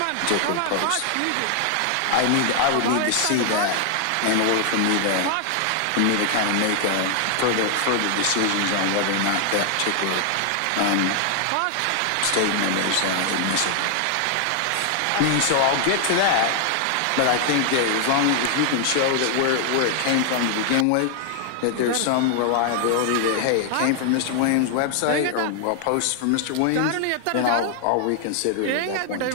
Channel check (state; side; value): different; both; correlation 0.00